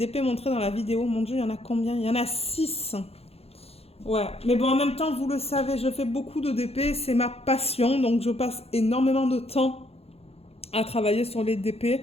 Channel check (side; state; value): right; late; 0.29 ms